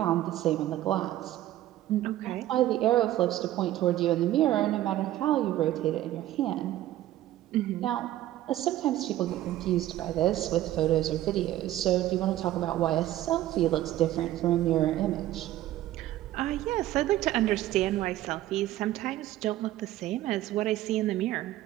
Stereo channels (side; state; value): left; quieter; 14.1 dB